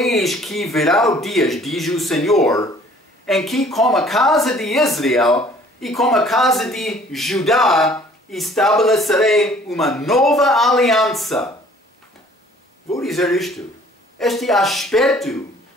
que virá o dias, diz o Senhor, em que com a casa de Israel e com a casa de Judá estabelecerei uma nova aliança. Vou dizer isto. Este aspecto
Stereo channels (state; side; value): normal; both; correlation 0.55